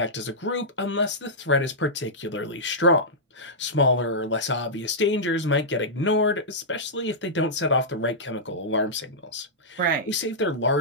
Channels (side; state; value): both; normal; correlation -0.12